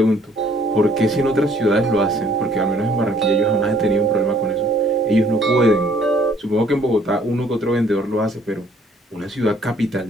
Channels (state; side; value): normal; both; correlation 0.61